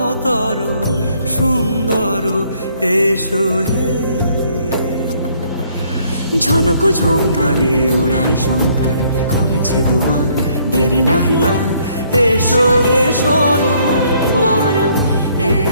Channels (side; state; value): both; inverted; correlation -0.65